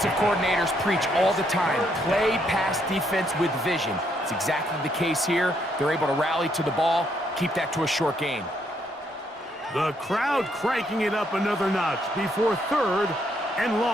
coordinators preach all the time, play pass defense with vision. It's exactly the case here. They're able to rally to the ball, keep that to a short gain. The crowd cranking it up another notch before 3rd and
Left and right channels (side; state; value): both; normal; correlation 0.73